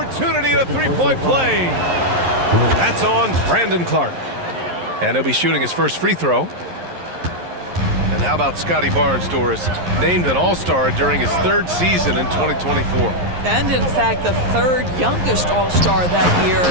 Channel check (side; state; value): left; late; 11 ms